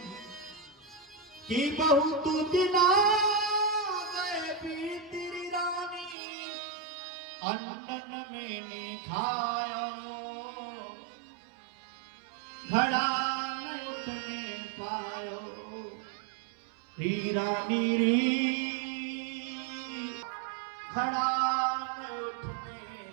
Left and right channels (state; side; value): drops out; left; at 6.2 s